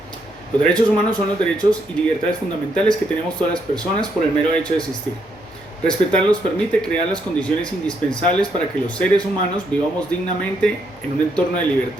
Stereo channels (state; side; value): noise; right; hum, 28 dB below the sound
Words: Los derechos humanos son los derechos y libertades fundamentales que tenemos todas las personas por el mero hecho de existir. Respetarlos permite crear las condiciones indispensables para que los seres humanos vivamos dignamente en un entorno de